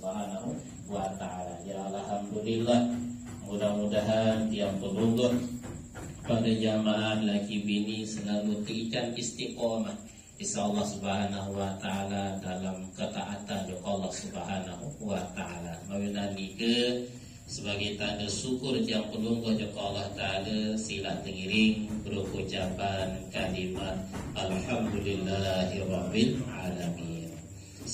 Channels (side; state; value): both; identical; correlation 1.00